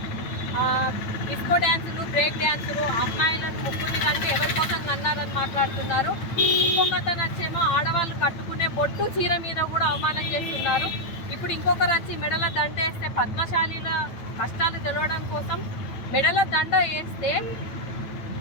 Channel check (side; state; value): right; late; 9.1 ms